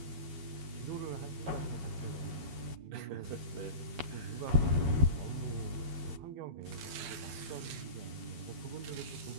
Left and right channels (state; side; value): late; left; 13 ms